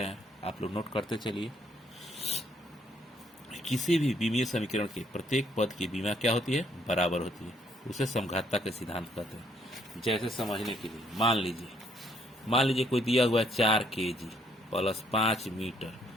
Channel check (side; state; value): both; normal; correlation 0.68